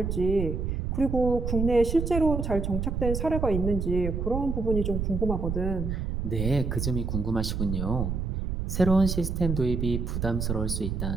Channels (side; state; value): right; noise; rumble, 2 dB below the sound